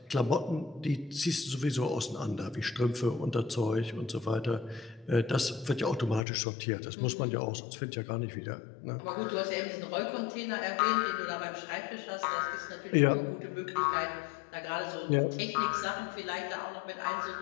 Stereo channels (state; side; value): drops out; right; at 6.2 s